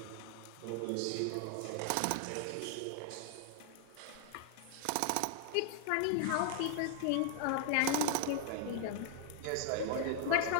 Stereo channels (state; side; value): different; both; correlation 0.00